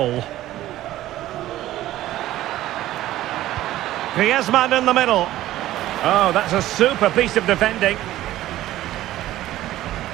Griezmann in the middle. Oh, that's a super piece of defending.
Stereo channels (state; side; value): quieter; left; 14.6 dB